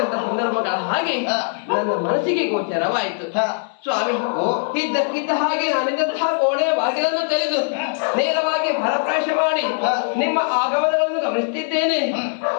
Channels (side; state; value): right; silent; digital silence